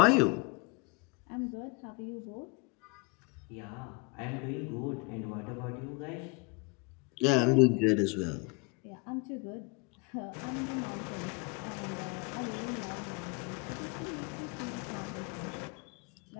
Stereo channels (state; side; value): quieter; right; 30.0 dB